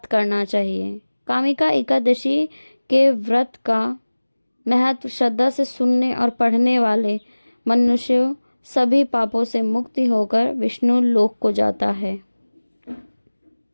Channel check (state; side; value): inverted; both; correlation -1.00